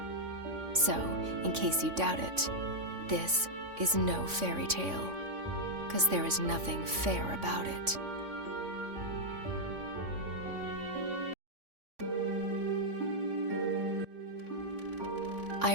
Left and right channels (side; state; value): left; late; 3.5 ms